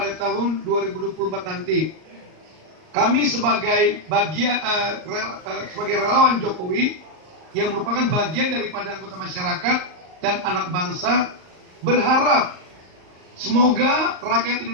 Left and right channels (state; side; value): late; left; 38 ms